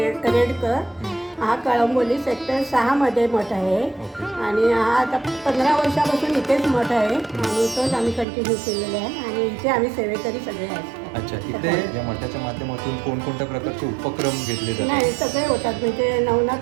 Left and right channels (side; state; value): left; drops out; at 8.2 s